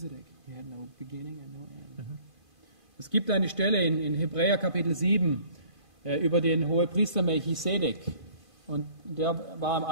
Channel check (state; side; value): late; right; 2.5 ms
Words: He had no beginning and no end. Es gibt eine Stelle in Hebräer Kapitel 7 über den Hohepriester Melchizedek. Und der war im